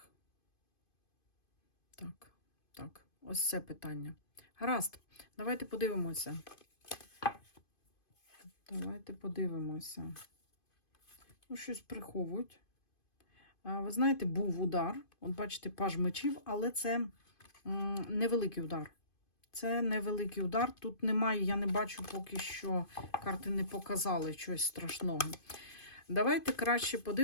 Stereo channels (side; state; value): right; late; 2.5 ms